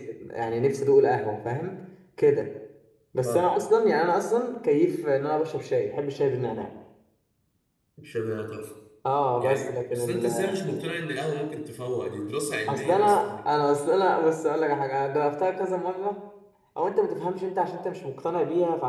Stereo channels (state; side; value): identical; both; correlation 1.00